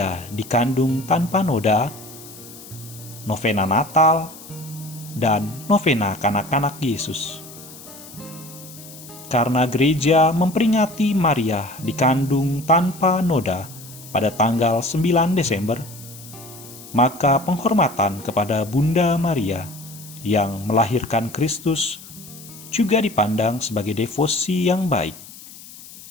dikandung tanpa noda, novena Natal, dan novena kanak-kanak Yesus. Karena gereja memperingati Maria dikandung tanpa noda pada tanggal 9 Desember, maka penghormatan kepada Bunda Maria yang melahirkan Kristus juga dipandang sebagai devosi yang baik.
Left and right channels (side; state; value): left; noise; hiss, 17 dB below the sound